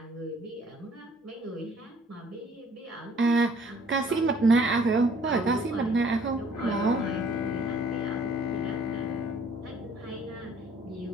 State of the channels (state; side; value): normal; both; correlation 0.58